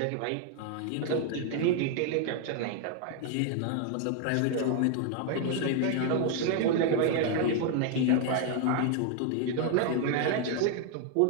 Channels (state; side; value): different; both; correlation 0.00